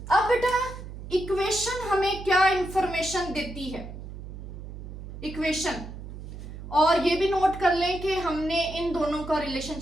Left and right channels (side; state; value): right; noise; hum, 11 dB below the sound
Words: अब बेटा इक्वेशन हमें क्या इंफॉर्मेशन देती है? इक्वेशन, और ये भी नोट कर लें कि हमने इन दोनों का